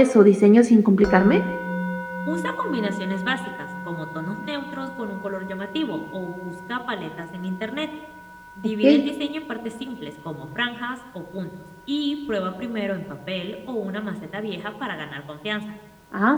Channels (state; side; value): identical; both; correlation 1.00